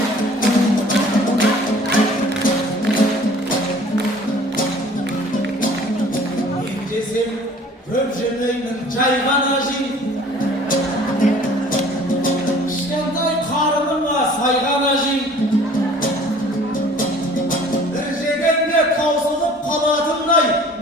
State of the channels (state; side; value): normal; both; correlation 0.50